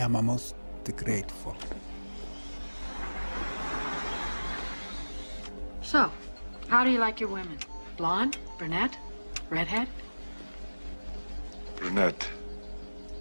most grateful. So, how do you like your women? Blonde? Brunette? Redhead? Brunette.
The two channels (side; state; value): both; inverted; correlation -1.00